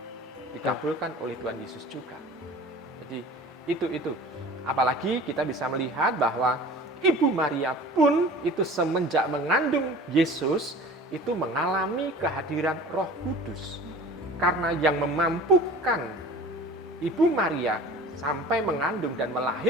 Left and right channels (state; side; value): normal; both; correlation 0.41